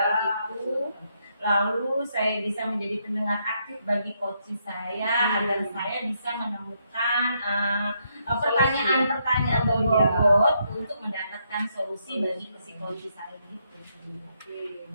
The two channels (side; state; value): both; inverted; correlation -0.77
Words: itu. Lalu saya bisa menjadi pendengar aktif bagi coach saya agar saya bisa menemukan pertanyaan-pertanyaan berbobot untuk mendapatkan solusi bagi si coach saya gitu. Oke,